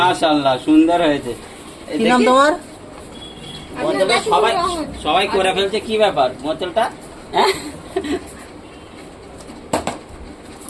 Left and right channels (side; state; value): both; identical; correlation 1.00